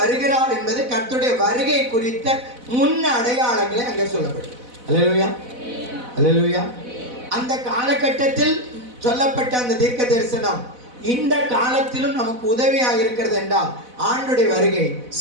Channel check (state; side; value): late; left; 4.0 ms